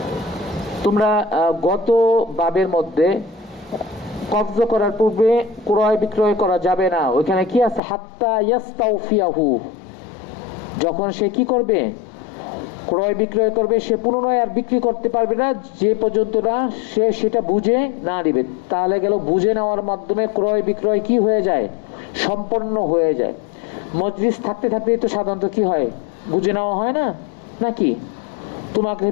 তোমরা গত বাবের মধ্যে কবজ করার পূর্বে ক্রয় বিক্রয় করা যাবে না, ওইখানে কি আছে? হাত্তা ইয়াস্তাউফিয়াহু, যখন সে কি করবে? ক্রয় বিক্রয় করবে, সে পুনরায় আর বিক্রি করতে পারবে না যে পর্যন্ত না সে সেটা বুঝে না নিবে। তাহলে গেল বুঝে নেওয়ার মাধ্যমে ক্রয় বিক্রয় কি হয়ে যায়? সম্পন্ন হয়ে যায়। মজলিস থাকতে থাকতে তো সাধারণত কি হয়? বুঝে নেওয়া হয় না নাকি? তোমাকে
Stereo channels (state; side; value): drops out; right; at 7.8 s